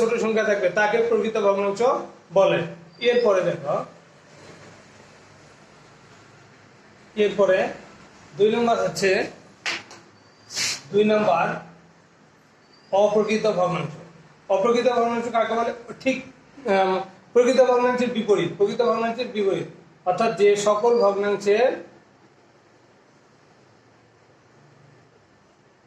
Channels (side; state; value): both; identical; correlation 1.00